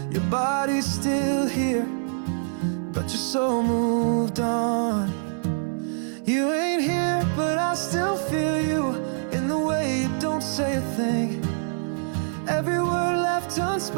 Your body's still here, but your soul moved on. You ain't here, but I still feel you in the way you don't say a thing. Every word left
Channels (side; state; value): left; silent; digital silence